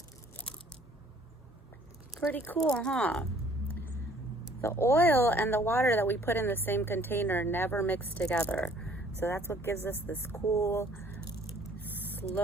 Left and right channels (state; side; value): normal; both; correlation 0.58